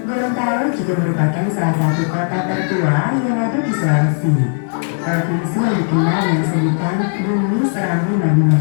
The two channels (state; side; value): silent; right; digital silence